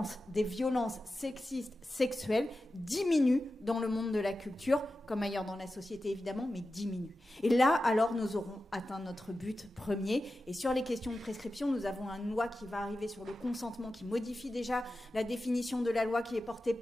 des violences sexistes, sexuelles diminue dans le monde de la culture, comme ailleurs dans la société évidemment, mais diminue. Et là, alors, nous aurons atteint notre but premier. Et sur les questions de prescription, nous avons une loi qui va arriver sur le consentement, qui modifie déjà la définition de la loi qui est portée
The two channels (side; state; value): both; normal; correlation 0.93